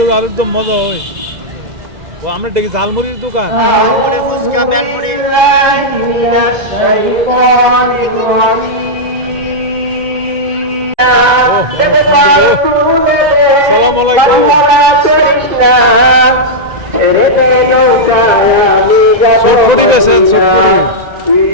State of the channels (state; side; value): late; left; 2.0 ms